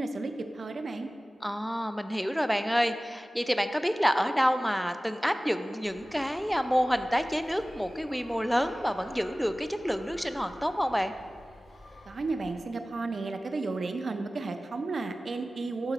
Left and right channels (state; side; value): normal; both; correlation 0.97